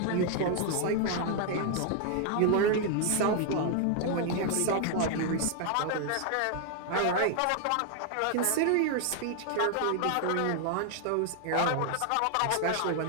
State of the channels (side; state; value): both; different; correlation 0.00